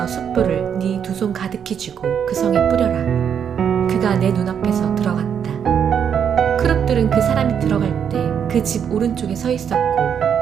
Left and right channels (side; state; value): left; quieter; 8.0 dB